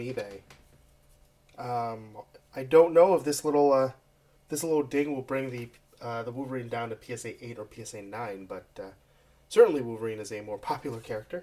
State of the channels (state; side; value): identical; both; correlation 1.00